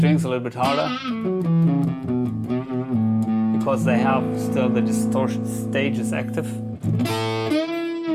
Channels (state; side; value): identical; both; correlation 1.00